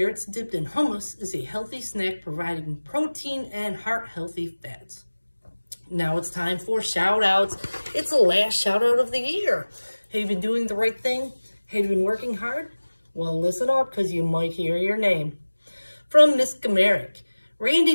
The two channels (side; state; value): both; inverted; correlation -1.00